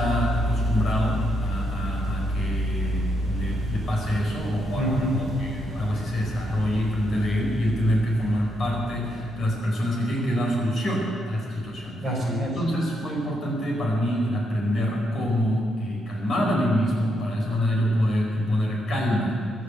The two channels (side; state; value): both; normal; correlation 0.79